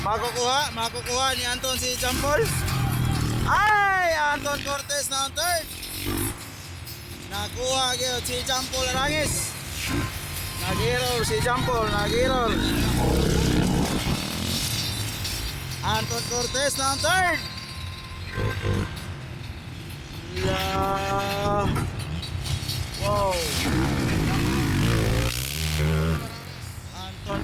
makukuha ni Anton si Jampol. Ay, Anton Cortez na ang third. Nakuha gyud si Jampol Arangis. Nag-error si Jampol, nag-error. Anton Cortez na ang third. Wow. Anton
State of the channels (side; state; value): both; identical; correlation 1.00